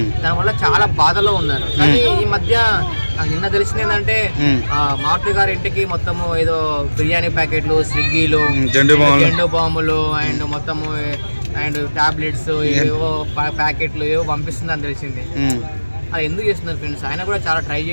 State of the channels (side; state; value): both; inverted; correlation -1.00